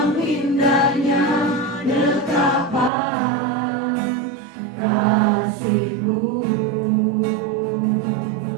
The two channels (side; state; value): left; drops out; at 2.9 s